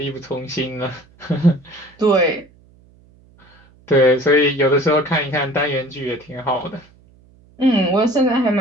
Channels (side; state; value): right; noise; hum, 29 dB below the sound